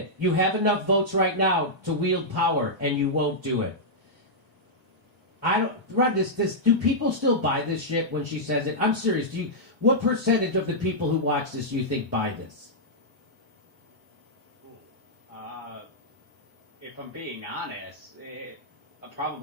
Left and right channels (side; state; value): both; normal; correlation -0.08